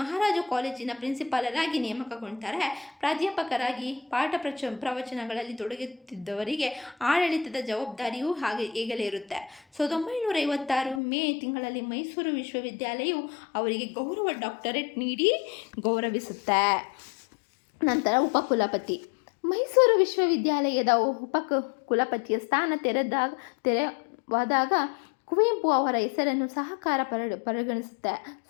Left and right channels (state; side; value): drops out; right; at 11.0 s